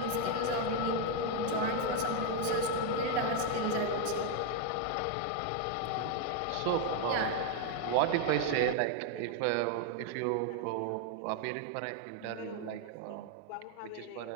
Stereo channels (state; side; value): different; both; correlation 0.01